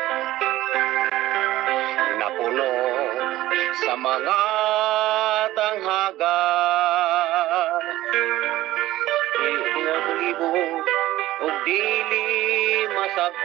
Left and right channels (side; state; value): left; quieter; 15.8 dB